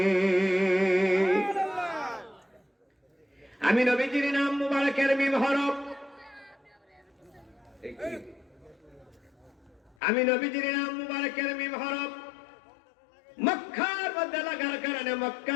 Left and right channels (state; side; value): drops out; right; at 10.0 s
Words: আমি নবীজির নাম মুবারকের মিম হরফ। আমি নবীজির নাম মুবারকের মিম হরফ মক্কার মধ্যে লাগার কারণে মক্কা